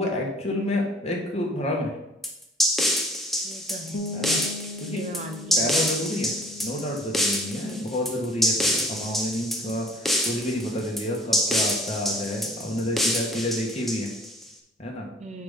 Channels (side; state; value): both; normal; correlation 0.54